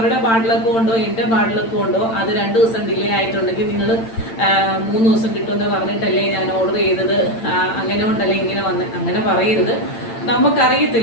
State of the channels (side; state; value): right; late; 8.9 ms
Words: ബാഡ് ലക്ക് കൊണ്ടോ എൻ്റെ ബാഡ് ലക്ക് കൊണ്ടോ അത് 2 ദിവസം ഡിലേ ആയിട്ടുണ്ടെങ്കിൽ നിങ്ങൾ 3 ദിവസം കിട്ടുമെന്ന് പറഞ്ഞിട്ടല്ലേ ഞാൻ ഓർഡർ ചെയ്തത്, അങ്ങനെ കൊണ്ടല്ലേ ഇങ്ങനെ അങ്ങനെ പറയരുത്.